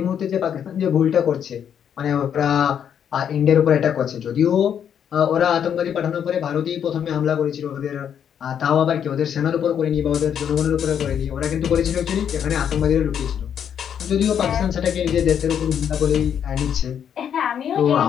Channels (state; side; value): quieter; right; 8.6 dB